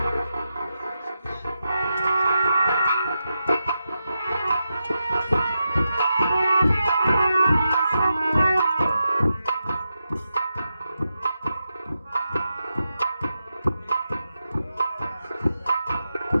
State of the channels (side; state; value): both; inverted; correlation -0.88